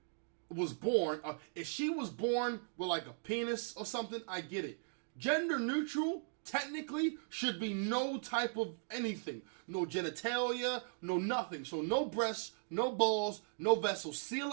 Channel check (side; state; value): left; silent; digital silence